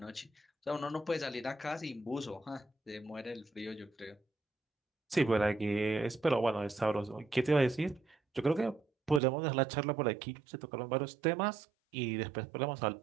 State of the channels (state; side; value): drops out; left; at 9.2 s